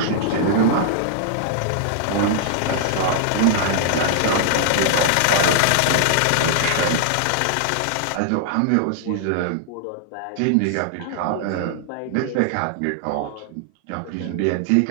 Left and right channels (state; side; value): different; both; correlation -0.01